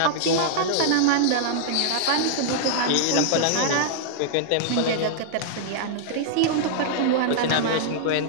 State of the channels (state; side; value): different; both; correlation -0.02